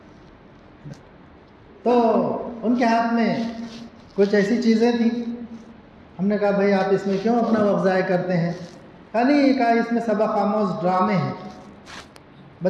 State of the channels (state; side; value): identical; both; correlation 1.00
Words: تو ان کے ہاتھ میں کچھ ایسی چیزیں تھیں. ہم نے کہا بھائی آپ اس میں کیوں اپنا وقت ضائع کرتے ہیں؟ نہیں، کہا اس میں سبق آموز ڈرامے ہیں،